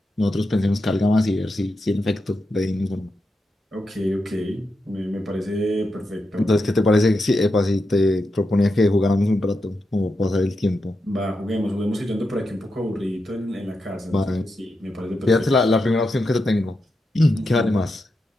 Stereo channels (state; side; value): normal; both; correlation 0.87